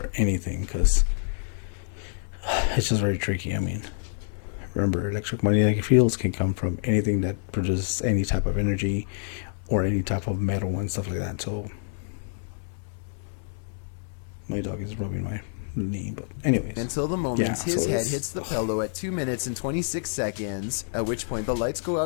anything, because it's just very tricky. I mean, remember, electromagnetic fields can come from anything that produces any type of energy, or any type of metal and stuff like that. So my dog is rubbing my knee, but anyways. Until the moment his head it's- hits the pillow at 2 minutes and 26 seconds, at which point the lights go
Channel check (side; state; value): right; silent; 60 dB below the other